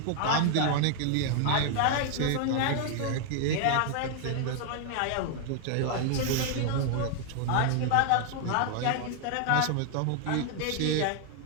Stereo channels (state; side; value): different; both; correlation 0.00